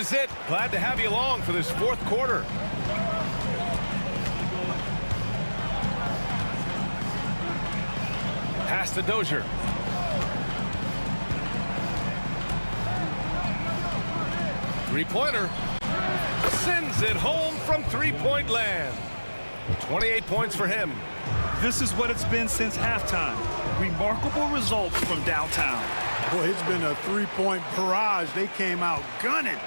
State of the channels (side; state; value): both; inverted; correlation -1.00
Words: it. Glad to have you along for this fourth quarter. Pass to Dozier. Three-pointer. Sends it home from three-point land. 28 points for him. This is what it's been since halftime. Remarkable results from downtown. Boy, it's been a three-point barrage. They came out gunning